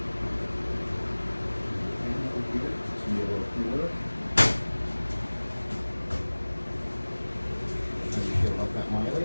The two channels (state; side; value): inverted; both; correlation -1.00